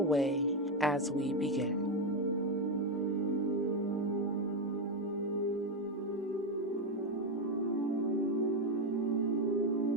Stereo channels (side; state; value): both; normal; correlation 0.08